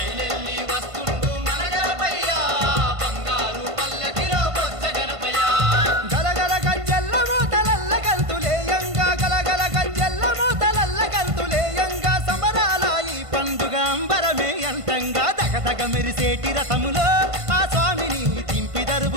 వస్తుండు మన గణపయ్య బంగారు పల్లకిలో బొజ్జ గణపయ్య గలగల గజ్జెల్ల మోతలల్ల గంతులేయంగా గలగల గజ్జెల్ల మోతలల్ల గంతులేయంగా సమరాల ఈ పండుగ అంబరమే అంతంగా దగదగ మెరిసేటి రథములో ఆ స్వామిని దింపి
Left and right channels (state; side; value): late; left; 1.5 ms